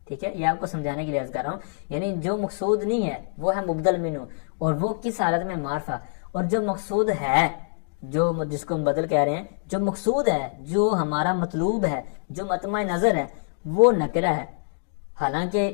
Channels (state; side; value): silent; right; digital silence